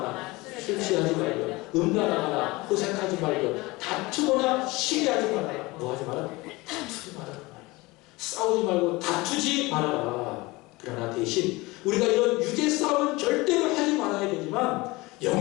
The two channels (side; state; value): right; quieter; 22.3 dB